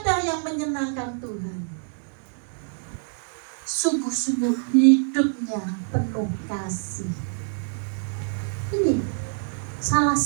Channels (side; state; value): left; silent; 61 dB below the other